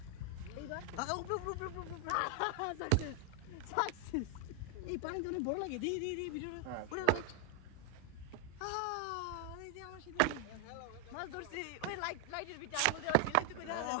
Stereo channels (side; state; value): both; different; correlation 0.01